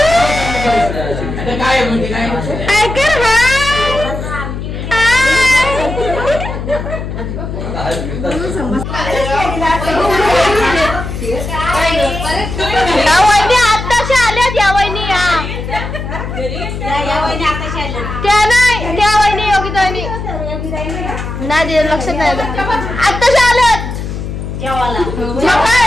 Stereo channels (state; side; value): noise; left; hum, 6 dB below the sound